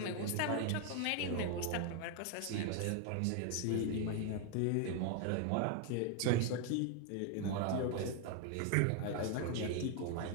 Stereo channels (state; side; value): different; both; correlation 0.01